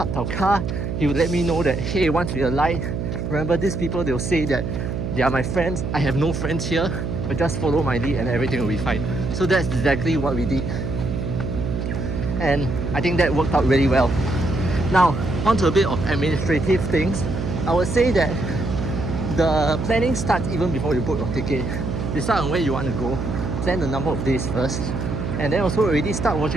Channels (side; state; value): right; noise; hum, 3 dB below the sound